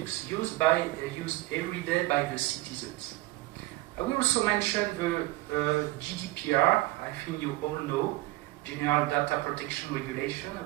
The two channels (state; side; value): quieter; left; 19.6 dB